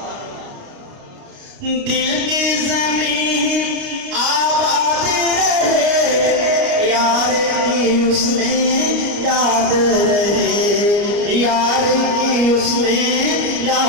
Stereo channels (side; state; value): left; late; 29 ms